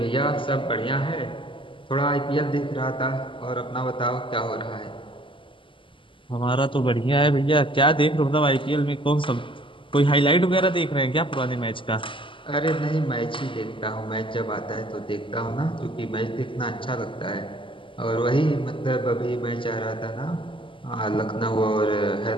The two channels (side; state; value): right; late; 0.25 ms